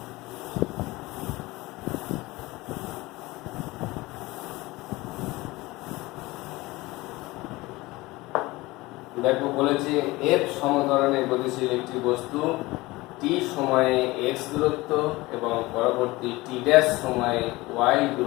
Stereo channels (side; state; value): right; quieter; 20.7 dB